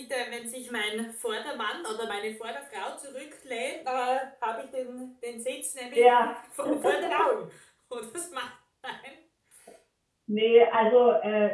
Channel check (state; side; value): identical; both; correlation 1.00